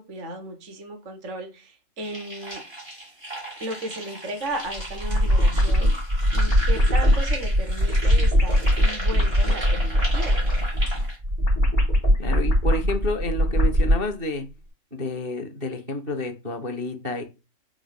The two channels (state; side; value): late; left; 2.9 ms